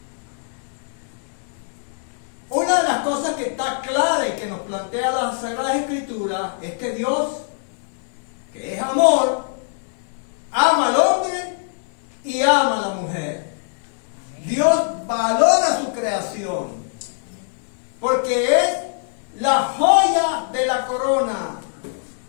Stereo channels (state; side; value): silent; right; digital silence